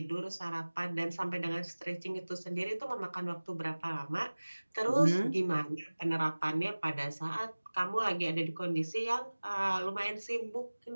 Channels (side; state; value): both; inverted; correlation -1.00